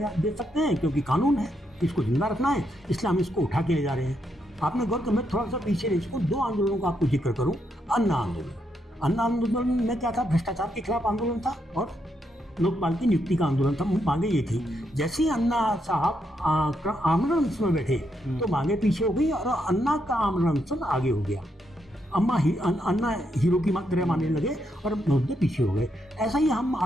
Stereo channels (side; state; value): both; normal; correlation 0.79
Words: दे सकते हैं, क्योंकि कानून है, इसको जिंदा रखना है, इसलिए हम इसको उठा के ले जा रहे हैं। आपने गौर कर, मैं थोड़ा सा पीछे इसको 2 आंदोलनों का आपको जिक्र करूं। अन्ना आंदोलन, अन्ना आंदोलन में क्या था, भ्रष्टाचार के खिलाफ आंदोलन था और लोकपाल की नियुक्ति का आंदोलन था। मांगे ये थी। जैसे ही अन्ना साहब आमरण अनशन में बैठे तो मांगे पीछे हो गई और अन्ना का आमरण अनशन आगे हो गया। अन्ना हीरो की तरह मानने लगे और मुद्दे पीछे हो गए। ऐसा ही हम,